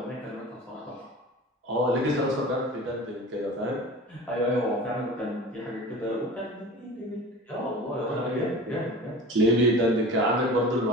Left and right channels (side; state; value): both; normal; correlation 0.37